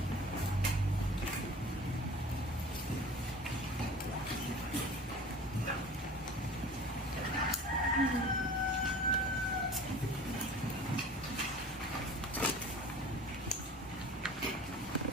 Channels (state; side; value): normal; both; correlation 0.41